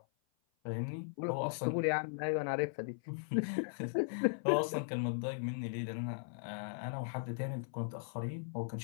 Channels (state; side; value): silent; right; 52 dB below the other